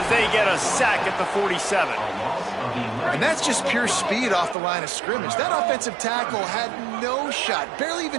they get a sack at the 47. And that's just pure speed off the line of scrimmage. That offensive tackle had no shot. Barely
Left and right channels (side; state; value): left; drops out; at 4.5 s